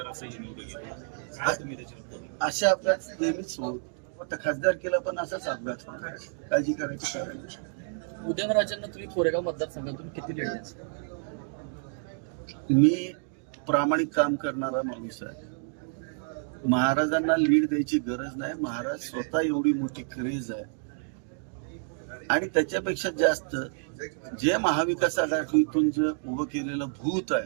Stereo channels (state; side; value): silent; left; 59 dB below the other